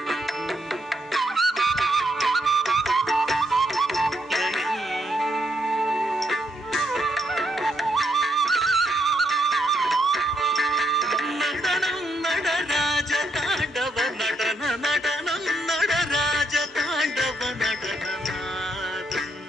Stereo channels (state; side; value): normal; both; correlation 0.76